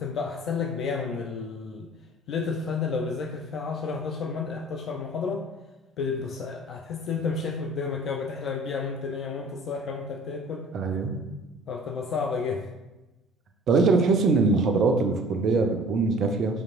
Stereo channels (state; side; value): normal; both; correlation 0.47